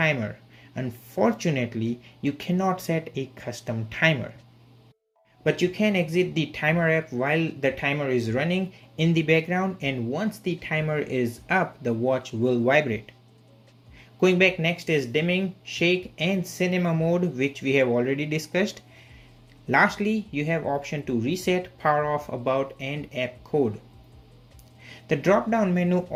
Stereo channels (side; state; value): both; identical; correlation 1.00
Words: Unfortunately, you cannot set a custom timer, but you can exit the timer app while the timer is running in the background, and once the timer is up, the watch will vibrate. Going back, next is dimming, shake, and cinema mode, which we have already discussed. Lastly, you have option to reset, power off, about, and app code. The drop down menu